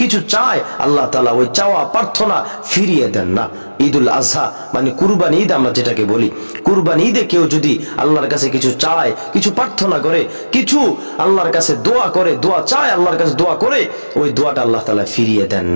চায়, আল্লাহ তাআলা ওই চাওয়া প্রার্থনা ফিরিয়ে দেন না। ঈদুল আজহা মানে কুরবানি ঈদ, আমরা যেটাকে বলি কুরবানি ঈদে কেউ যদি আল্লাহর কাছে কিছু চায়, কিছু প্রার্থনা করে, কিছু আল্লাহর কাছে দোয়া করে, দোয়া চায়, আল্লাহর কাছে দোয়া করে, ওই দোয়াটা আল্লাহ তাআলা ফিরিয়ে দেন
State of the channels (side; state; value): both; inverted; correlation -1.00